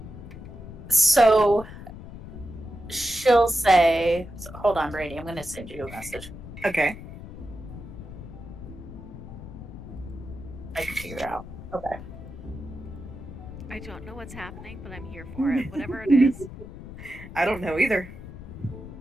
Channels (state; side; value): noise; left; rumble, 13 dB below the sound